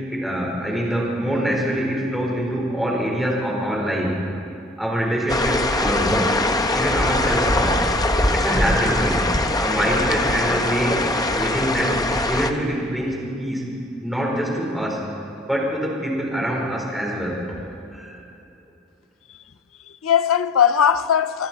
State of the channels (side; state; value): both; normal; correlation 0.50